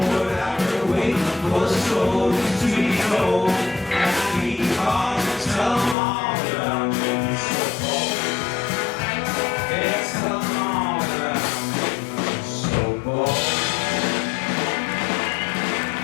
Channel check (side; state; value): right; drops out; at 6.0 s